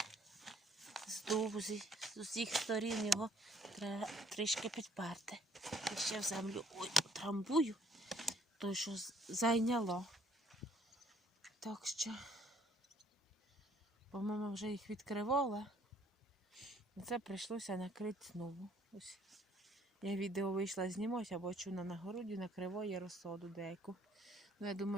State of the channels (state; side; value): normal; both; correlation 0.62